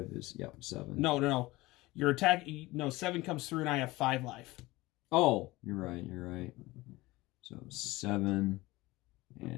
is 7. No. Your attack. No, 7 comes through, and I have 5 life. Oh, you're right. So 7,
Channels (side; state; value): right; quieter; 20.1 dB